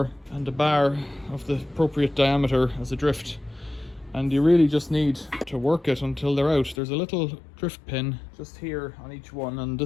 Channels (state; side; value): drops out; right; at 6.8 s